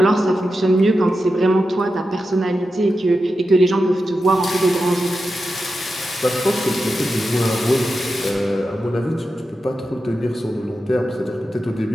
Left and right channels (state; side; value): normal; both; correlation 0.90